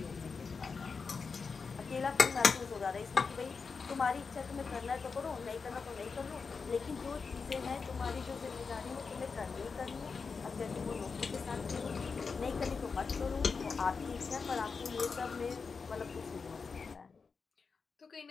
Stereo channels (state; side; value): quieter; right; 5.0 dB